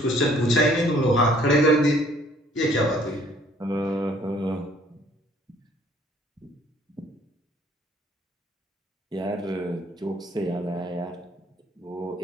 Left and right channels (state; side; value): normal; both; correlation 0.59